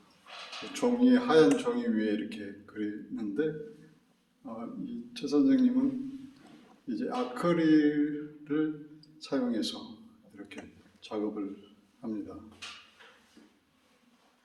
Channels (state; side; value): identical; both; correlation 1.00